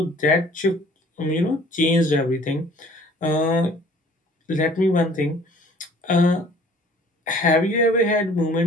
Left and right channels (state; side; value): normal; both; correlation 0.53